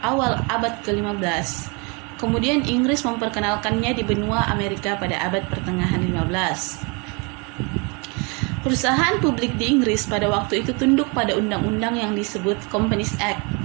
awal abad ke-15. Kemudian Inggris memperkenalkannya di benua Amerika pada abad pertengahan 15. Perusahaan publik di Inggris pada waktu itu tunduk pada undang-undang yang disebut Companies Act.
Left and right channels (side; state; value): left; quieter; 31.4 dB